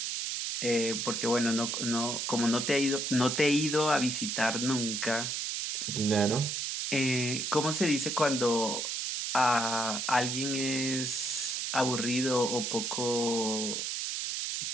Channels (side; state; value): right; noise; hiss, 2 dB below the sound